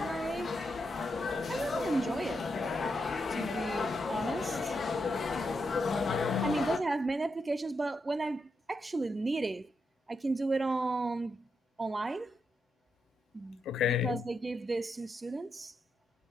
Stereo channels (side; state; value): both; normal; correlation 0.83